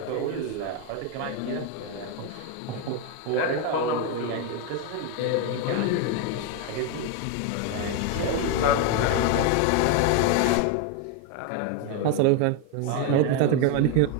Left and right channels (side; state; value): both; different; correlation 0.02